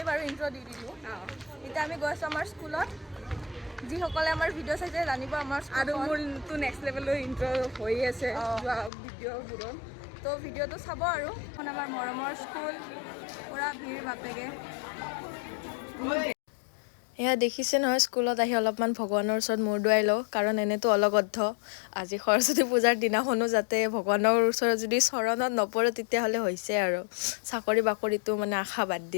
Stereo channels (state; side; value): drops out; right; at 8.9 s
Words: বাৰু ইন্ট্ৰো দি দিলো এটা আমি গৈছো আমাৰ স্কুলত যি সকলে আমাৰ ভিডিও চাইছে জানিব আমাৰ আৰু মোৰ টু নেক্সট লেভেলৰ ইন্ট্ৰো হৈ আছে ভিডিওবোৰ তো ভিডিওটো চাব আৰু এখন আমাৰ মৰমৰ স্কুল পুৰা ভিৰ বাপেগে এয়া দেখিছে নহয় স্কুলত আহি অলপমান ভগৱানৰ ওচৰত মূৰ দুৱাই লওঁ কাৰণ এনেতো অলগদ্ধ আজি সৰস্বতী পূজাৰ দিনাখনো যাতে ভগৱানৰ ওচৰত যদি চৰণত নপৰে তেতিয়াহ'লে হৈছে আৰু চাকৰি বাকৰিটো মানে আশা বাদ